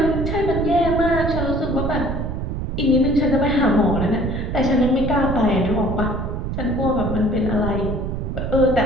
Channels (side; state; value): right; noise; rumble, 3 dB below the sound